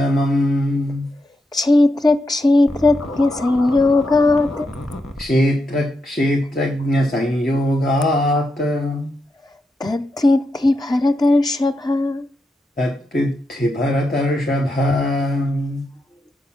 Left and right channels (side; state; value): both; normal; correlation 0.84